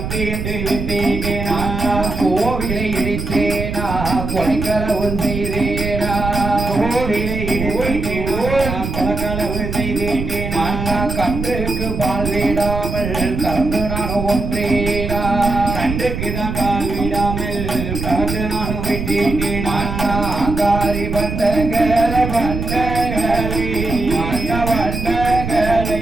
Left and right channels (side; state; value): right; noise; rumble, 4 dB below the sound